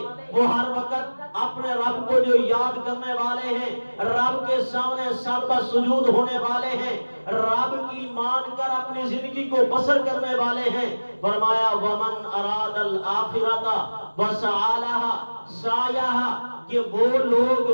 وہ ہر وقت اپنے رب کو جو یاد کرنے والے ہیں، رب کے سامنے سر بسجود ہونے والے ہیں، رب کی مان کر اپنی زندگی کو بسر کرنے والے ہیں۔ فرمایا وَمَنْ أَرَادَ الْآخِرَةَ وَسَعَى لَهَا سَعْيَهَا، کہ وہ لوگ،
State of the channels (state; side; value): inverted; both; correlation -1.00